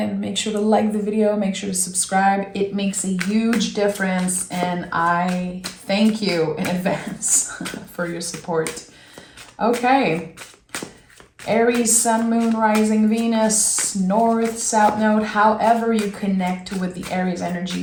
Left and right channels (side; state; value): both; identical; correlation 1.00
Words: Make sure to like the video, make sure to subscribe. It makes a huge difference and I thank you in advance for your support. Okay. Aries, Sun, Moon, Rising, Venus, North, South Node, however you connect with the Aries